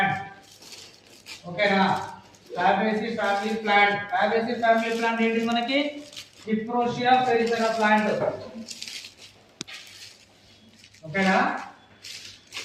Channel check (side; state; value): both; identical; correlation 1.00